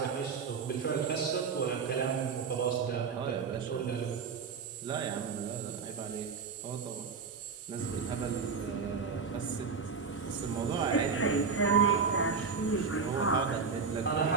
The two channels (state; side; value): quieter; left; 5.4 dB